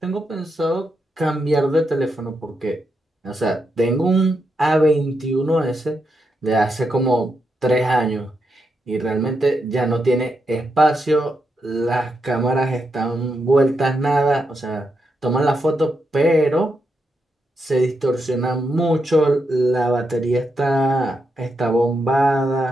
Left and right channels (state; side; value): normal; both; correlation 0.83